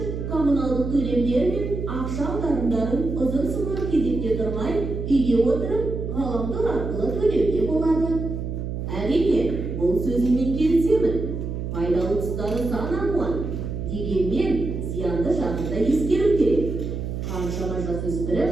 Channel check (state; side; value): noise; right; hum, 5 dB below the sound